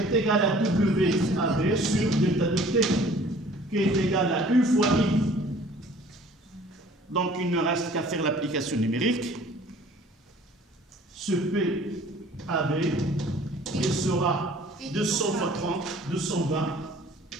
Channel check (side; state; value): both; normal; correlation 0.52